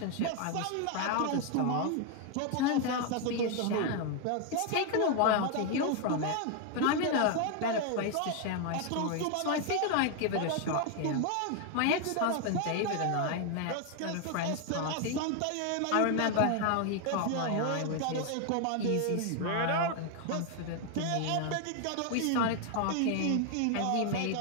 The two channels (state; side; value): different; both; correlation 0.00